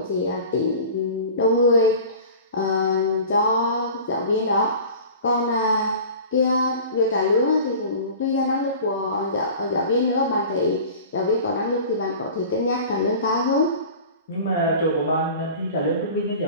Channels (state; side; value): inverted; both; correlation -0.39